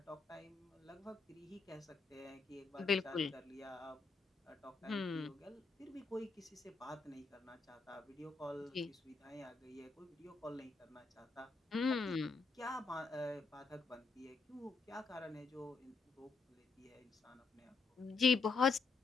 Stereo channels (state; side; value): quieter; right; 4.3 dB